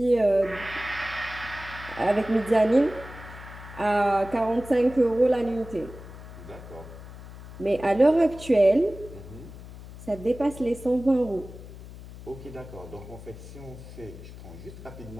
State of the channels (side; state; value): left; noise; hum, 15 dB below the sound